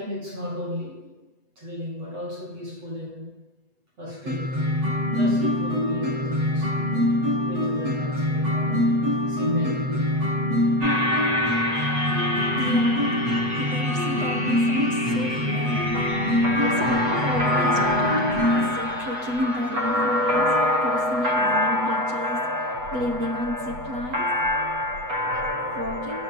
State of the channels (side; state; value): left; late; 8.0 ms